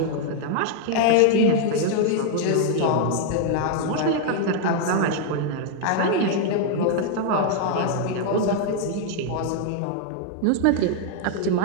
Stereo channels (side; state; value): both; different; correlation 0.00